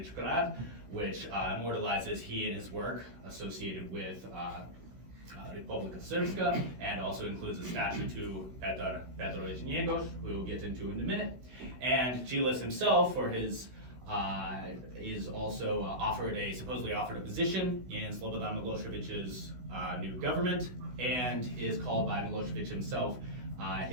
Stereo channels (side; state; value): left; late; 16 ms